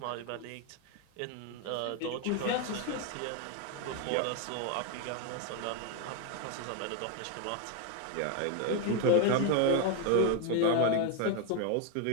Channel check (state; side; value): different; both; correlation 0.01